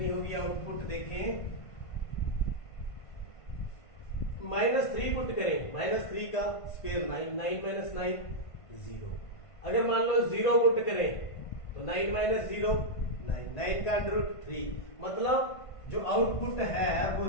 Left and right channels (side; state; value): right; late; 1.5 ms